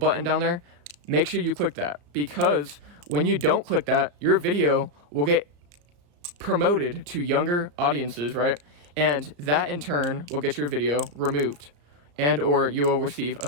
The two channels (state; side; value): late; left; 34 ms